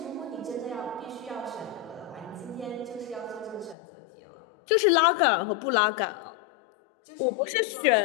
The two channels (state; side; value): drops out; right; at 3.8 s